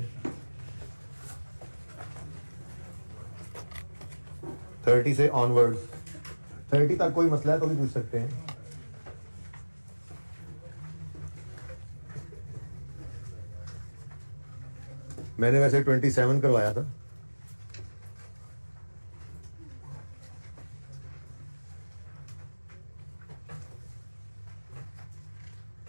30 से ऑनवर्ड्स, 30 तक कोई मसला है तो भी पूछ सकते हैं। मैंने वैसे 27 करवाया था।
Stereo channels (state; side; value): inverted; both; correlation -1.00